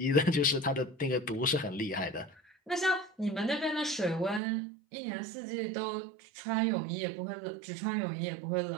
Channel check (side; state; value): left; drops out; at 4.4 s